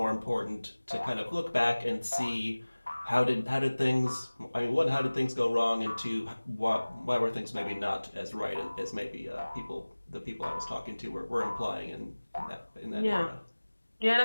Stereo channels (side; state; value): both; inverted; correlation -1.00